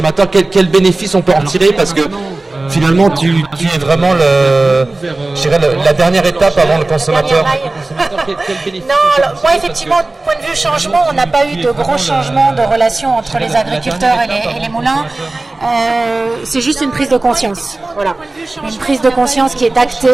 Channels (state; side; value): quieter; left; 3.1 dB